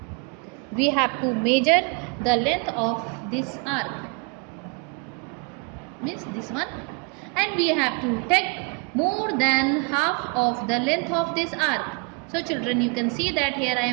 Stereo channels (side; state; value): left; quieter; 34.5 dB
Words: We have to measure the length of this arc, means this one, and we have to take more than half of the length of this arc. So children, you can see that here I